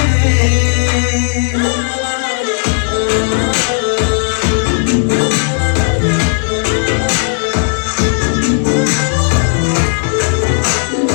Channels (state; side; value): silent; right; digital silence